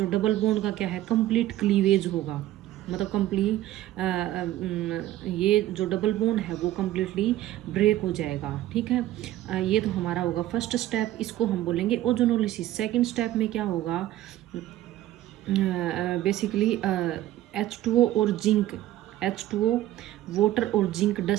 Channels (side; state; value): left; quieter; 14.1 dB